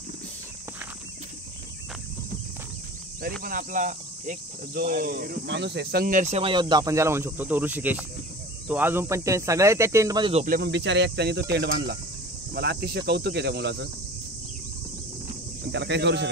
तरी पण आपला एक जो माणूस आहे, संघर्षमय योद्धा आपण ज्याला म्हणू शकतो, तो ऋषिकेश, तो अजून पण ते सगळे त्या टेंट मध्ये झोपले, पण बिचारे एकट्याने तो टेंट बांधला. मला अतिशय कौतुक आहे त्या मुलाचं, पण त्याला काही करू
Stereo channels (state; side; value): normal; both; correlation 0.39